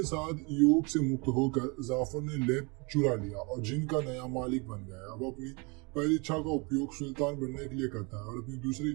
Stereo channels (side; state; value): left; quieter; 30.0 dB